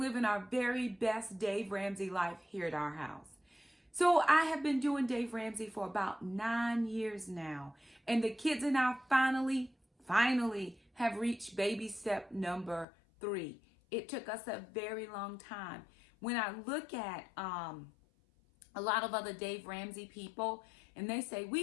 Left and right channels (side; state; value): right; drops out; at 12.9 s